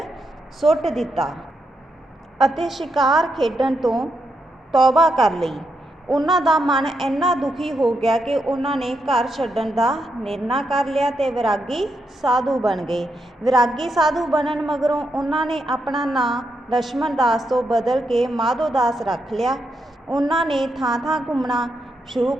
ਸੁੱਟ ਦਿੱਤਾ ਅਤੇ ਸ਼ਿਕਾਰ ਖੇਡਣ ਤੋਂ ਤੌਬਾ ਕਰ ਲਈ। ਉਹਨਾਂ ਦਾ ਮਨ ਇੰਨਾ ਦੁਖੀ ਹੋ ਗਿਆ ਕਿ ਉਹਨਾਂ ਨੇ ਘਰ ਛੱਡਣ ਦਾ ਨਿਰਣਾ ਕਰ ਲਿਆ ਤੇ ਵਿਰਾਗੀ ਸਾਧੂ ਬਣ ਗਏ। ਵਿਰਾਗੀ ਸਾਧੂ ਬਣਨ ਮਗਰੋਂ ਉਹਨਾਂ ਨੇ ਆਪਣਾ ਨਾਂ ਲਛਮਣ ਦਾਸ ਤੋਂ ਬਦਲ ਕੇ ਮਾਧੋ ਦਾਸ ਰੱਖ ਲਿਆ। ਉਹਨਾਂ ਨੇ ਥਾਂ-ਥਾਂ ਘੁੰਮਣਾ ਸ਼ੁਰੂ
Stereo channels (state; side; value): normal; both; correlation 0.82